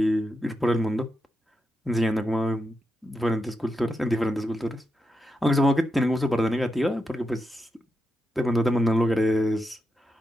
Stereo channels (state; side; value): normal; both; correlation 0.86